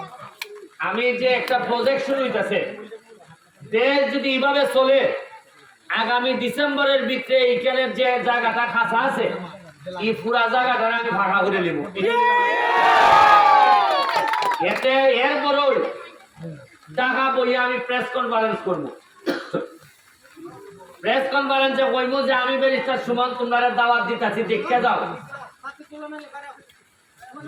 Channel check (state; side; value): identical; both; correlation 1.00